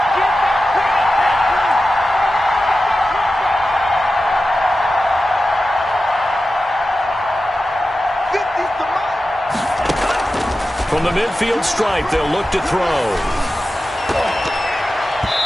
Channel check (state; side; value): normal; both; correlation 0.93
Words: From the midfield stripe, they'll look to throw.